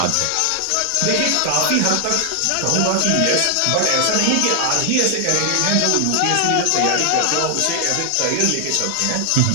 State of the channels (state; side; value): different; both; correlation 0.00